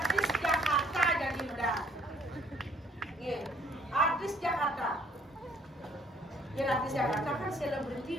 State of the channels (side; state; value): both; normal; correlation 0.62